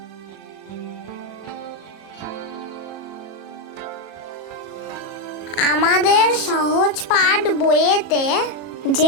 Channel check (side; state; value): right; late; 37 ms